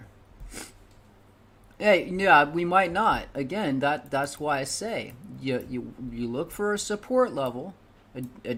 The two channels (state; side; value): identical; both; correlation 1.00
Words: Hey, yeah, we might not. Again, that's why I say you look for a support level. I